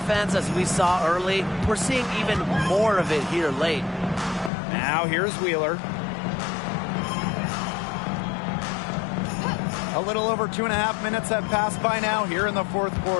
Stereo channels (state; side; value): drops out; right; at 4.5 s